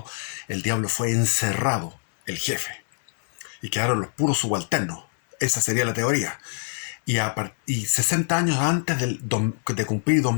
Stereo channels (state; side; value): silent; right; 62 dB below the other